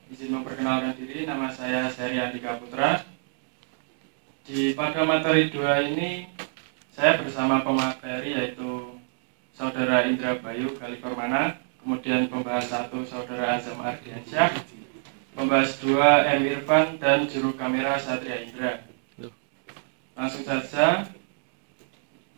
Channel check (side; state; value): left; silent; digital silence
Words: memperkenalkan diri. Nama saya Syahri Andika Putra. Pada materi 2 ini saya bersama pemateri yaitu Saudara Indra Bayu Kaliformana, kemudian pembahas 1 Saudara Azam Ardiansyah, pembahas 2 M. Irfan, dan juru kamera Satria Indra. Langsung saja